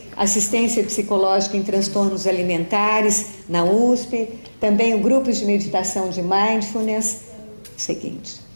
assistência psicológica em transtornos alimentares na USP, também o grupo de meditação de mindfulness. Seguinte,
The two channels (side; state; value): both; inverted; correlation -1.00